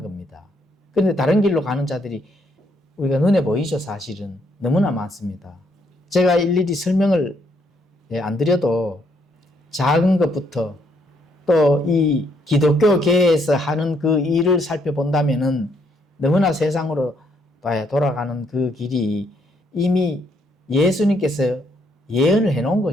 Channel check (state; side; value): normal; both; correlation 0.71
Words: 겁니다. 그런데 다른 길로 가는 자들이 우리가 눈에 보이죠, 사실은. 너무나 많습니다. 제가 일일이 설명을 안 드려도 작은 것부터 또 이 기독교계에서 하는 그 일을 살펴본다면은 너무나 세상으로 돌아가는 그 길이 이미 예수님께서 예언을 해놓은